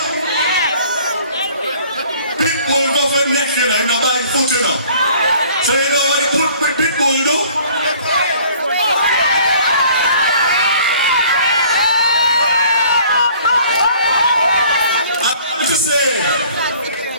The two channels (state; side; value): inverted; both; correlation -0.53